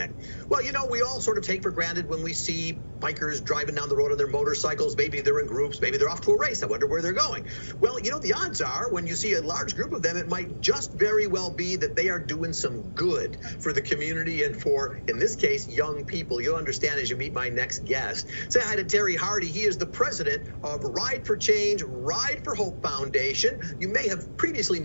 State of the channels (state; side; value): inverted; both; correlation -1.00